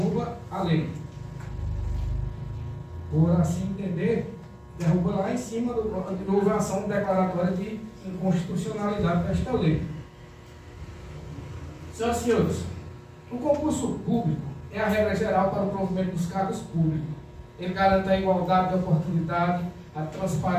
a lei. Por assim entender, derruba lá em cima de houve a ação declaratória de inconstitucionalidade desta lei. Senhoras e senhores, o concurso público é a regra geral para o provimento dos cargos públicos. Ele garante a igualdade de oportunidade, a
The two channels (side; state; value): both; identical; correlation 1.00